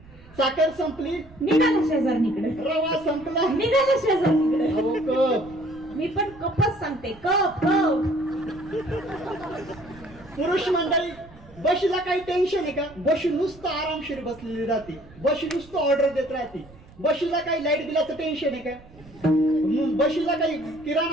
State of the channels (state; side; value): noise; right; rumble, 22 dB below the sound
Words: साखर संपली निघाला शेजारणीकडे. रवा संपला निघाला शेजारणीकडे. अहो कप. मी पण कपच सांगते कप कप. पुरुष मंडळी बशीला काही टेन्शन आहे का? बशी नुसतं आरामशीर बसलेली राहते. बशी नुसतं ऑर्डर देत राहते. बशीला काही लाईट बिलाचं टेन्शन आहे का? बशीला काही